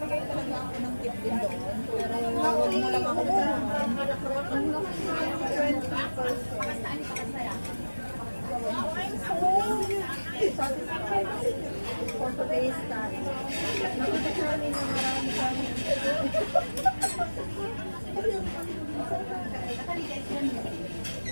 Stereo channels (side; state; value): both; inverted; correlation -1.00